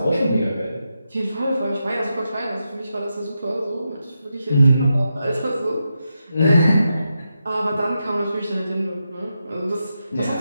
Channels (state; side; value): inverted; both; correlation -0.87